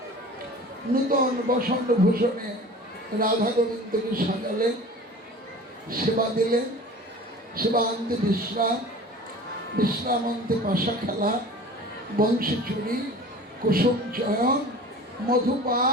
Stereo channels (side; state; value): both; normal; correlation 0.40